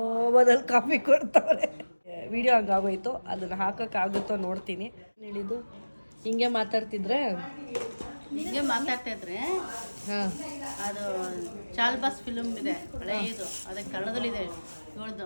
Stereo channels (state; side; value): inverted; both; correlation -1.00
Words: ಕಾಫಿ ಕೊಡ್ತವ್ರೆ. ವಿಡಿಯೋ ಹಂಗಾಗೋಯ್ತು. ಅದನ್ನು ಹಾಕೋಕ್ಕಾಗುತ್ತೋ ನೋಡ್ತೀನಿ. ಹೇಳಿದ್ದು ಹಿಂಗೆ ಮಾತಾಡ್ತಿದ್ರೆ ಹಿಂಗೆ ಮಾತಾಡ್ತಾ ಇದ್ರೆ ಅದು ಚಾಲ್ಬಾಸ್ ಫಿಲ್ಮ್ ಇದೆ ಹಳೆಯದು, ಅದಕ್ಕೆ ಕನ್ನಡದಲ್ಲಿದೆ. ಇವಳ್ದು